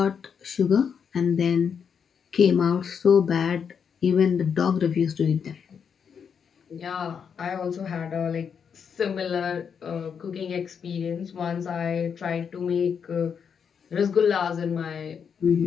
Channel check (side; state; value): right; quieter; 6.9 dB